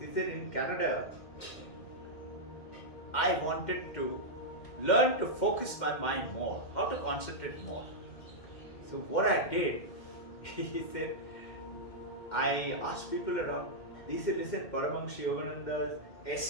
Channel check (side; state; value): right; late; 2.1 ms